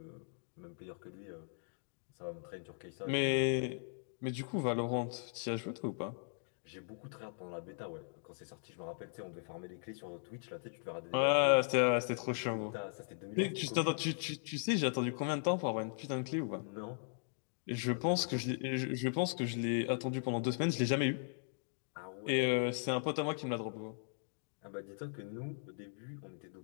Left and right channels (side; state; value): right; silent; digital silence